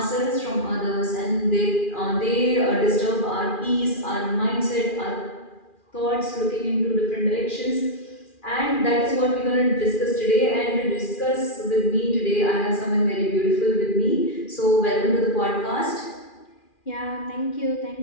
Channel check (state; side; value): late; right; 2.4 ms